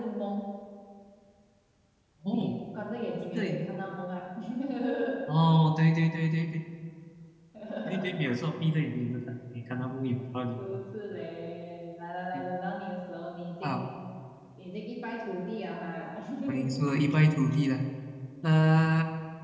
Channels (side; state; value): both; identical; correlation 1.00